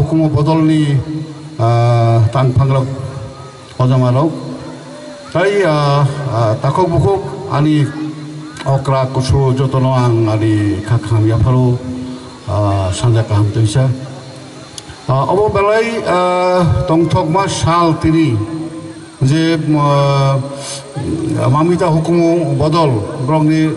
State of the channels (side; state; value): both; identical; correlation 1.00